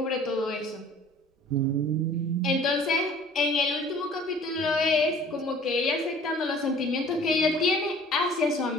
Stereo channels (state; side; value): normal; both; correlation 0.49